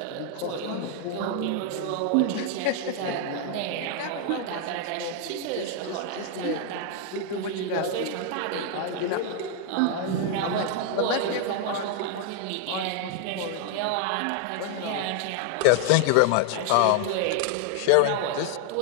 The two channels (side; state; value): both; different; correlation 0.00